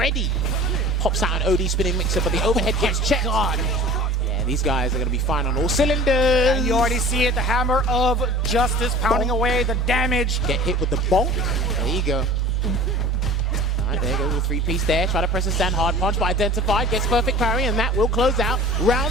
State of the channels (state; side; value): normal; both; correlation 0.41